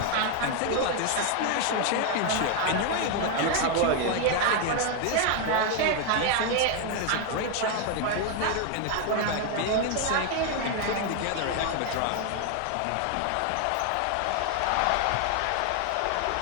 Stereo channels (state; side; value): different; both; correlation 0.01